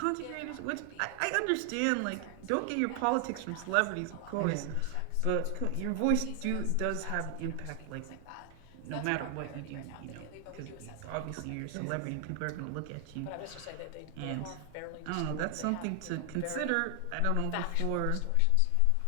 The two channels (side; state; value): both; different; correlation 0.00